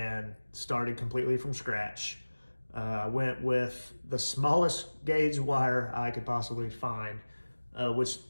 started completely from scratch. I went with the smallest gauge wire I could possibly find,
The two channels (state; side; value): inverted; both; correlation -1.00